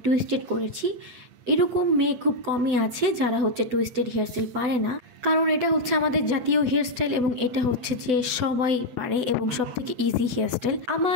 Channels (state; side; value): late; left; 8.0 ms